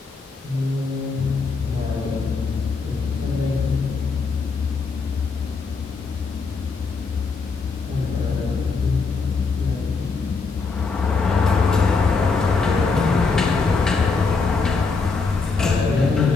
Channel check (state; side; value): quieter; right; 4.5 dB